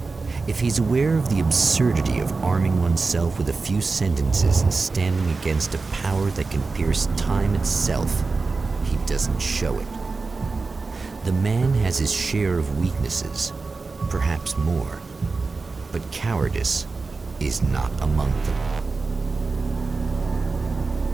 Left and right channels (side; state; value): left; quieter; 4.1 dB